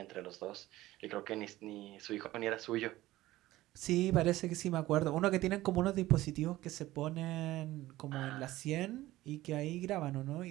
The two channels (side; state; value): left; quieter; 16.6 dB